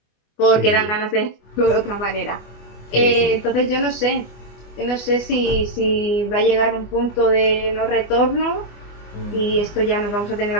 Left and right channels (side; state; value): right; late; 24 ms